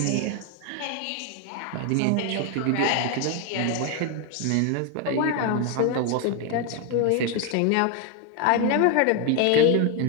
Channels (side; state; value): both; different; correlation 0.01